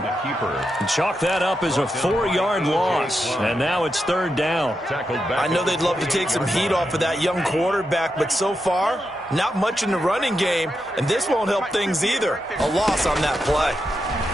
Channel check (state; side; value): normal; both; correlation 0.86